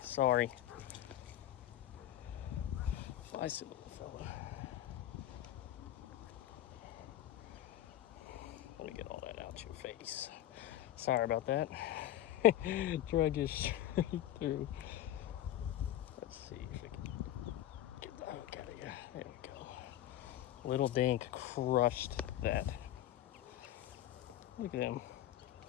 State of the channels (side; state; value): right; quieter; 12.8 dB